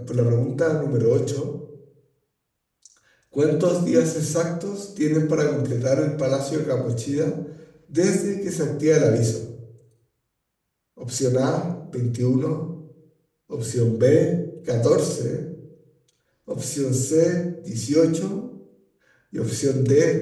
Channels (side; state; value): both; identical; correlation 1.00